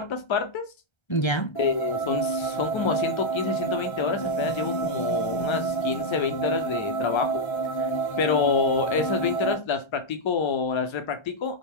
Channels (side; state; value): right; late; 1.3 ms